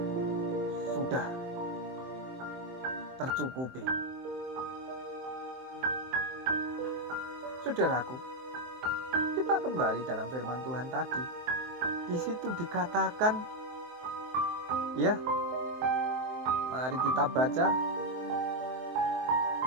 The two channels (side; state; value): left; late; 23 ms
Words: Sudah tercukupi. Saudaraku, kita kembali dalam firman Tuhan tadi. Di situ dikatakan, mari kita baca.